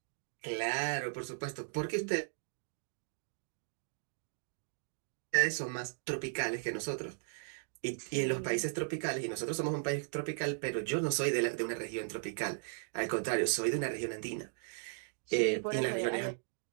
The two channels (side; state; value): left; silent; digital silence